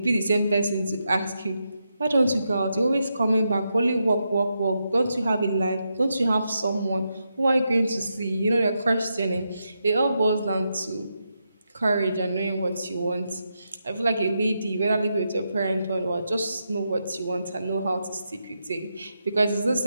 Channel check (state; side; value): inverted; both; correlation -0.84